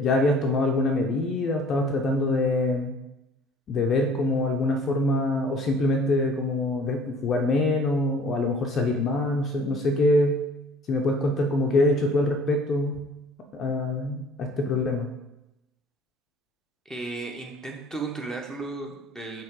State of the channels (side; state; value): both; normal; correlation 0.52